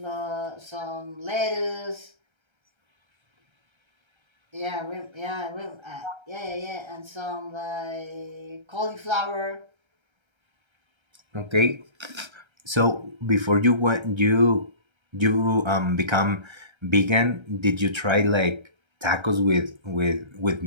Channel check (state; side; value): late; left; 1.3 ms